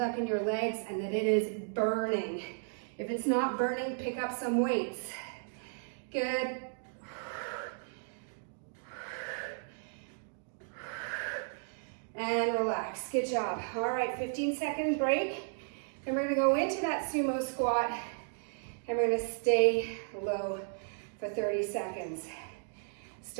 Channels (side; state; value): left; silent; digital silence